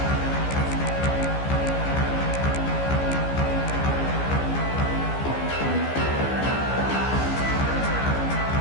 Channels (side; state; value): right; late; 15 ms